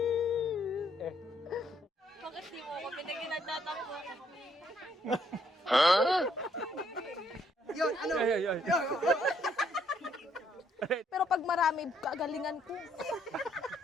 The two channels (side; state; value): both; normal; correlation 0.70